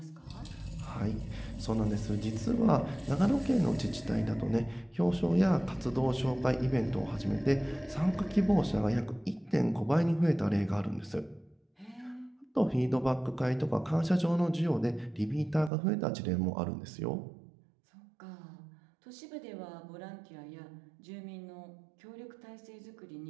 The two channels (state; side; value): drops out; left; at 15.7 s